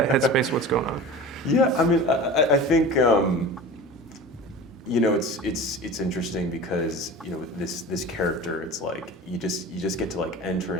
headspace? What's going on? Yeah, I mean, I think it's interesting because this character, it's like you just get to like enter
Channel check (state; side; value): normal; both; correlation 0.35